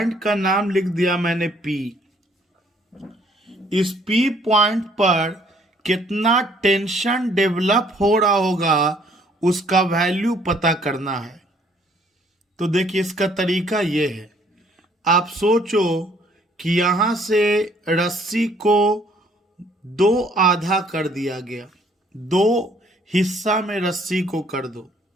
का नाम लिख दिया मैंने P। इस P पॉइंट पर कितना टेंशन डेवलप हो रहा होगा उसका वैल्यू पता करना है। तो देखिए इसका तरीका ये है, आप सोचो कि यहां से रस्सी को दो आधा कर दिया गया, दो हिस्सा में रस्सी को कर दो।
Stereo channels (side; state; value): both; normal; correlation 0.62